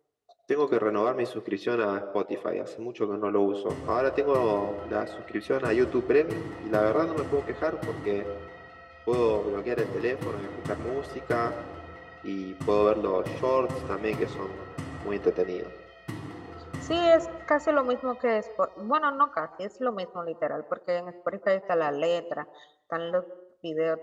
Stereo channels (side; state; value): both; identical; correlation 1.00